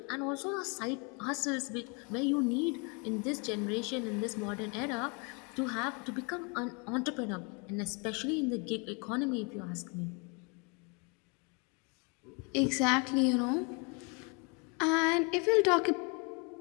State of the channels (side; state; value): right; quieter; 33.1 dB